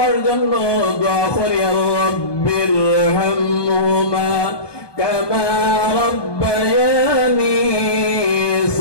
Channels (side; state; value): right; late; 1.2 ms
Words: জন্য দোয়া করি আল্লাহ, বিরহামহুমা কামা রাব্বায়ানি